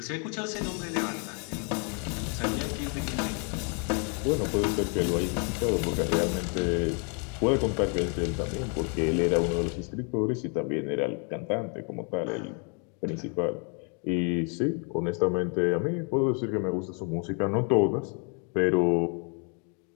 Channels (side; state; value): right; quieter; 38.4 dB